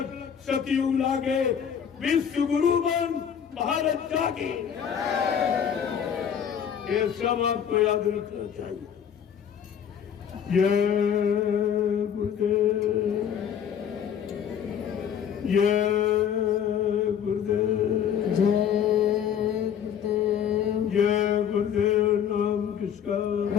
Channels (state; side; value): quieter; right; 8.4 dB